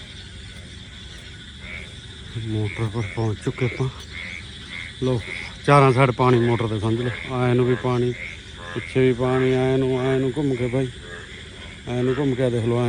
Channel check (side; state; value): both; identical; correlation 1.00